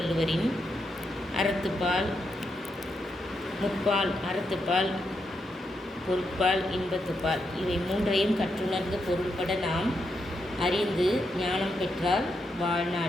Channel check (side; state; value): both; normal; correlation 0.82